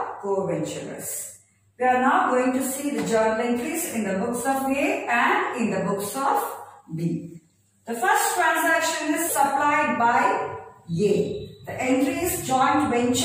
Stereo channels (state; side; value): identical; both; correlation 1.00